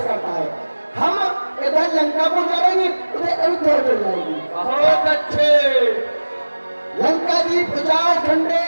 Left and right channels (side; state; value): both; inverted; correlation -1.00